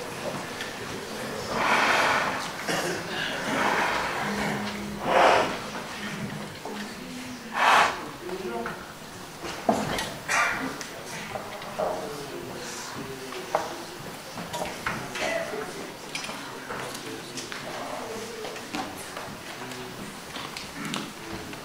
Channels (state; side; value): identical; both; correlation 1.00